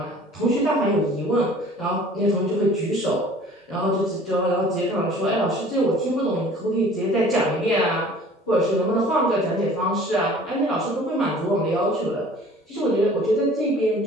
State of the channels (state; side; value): normal; both; correlation 0.49